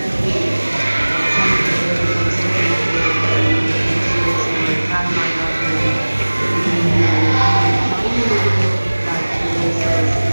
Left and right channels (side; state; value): both; inverted; correlation -1.00